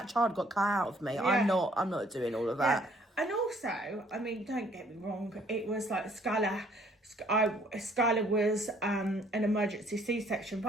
child got cut out of me. Yeah. I'm not doing all of that. Yeah. And also, don't get me wrong, it was like Skylar Skylar was an emergency C-section,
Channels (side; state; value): both; normal; correlation 0.62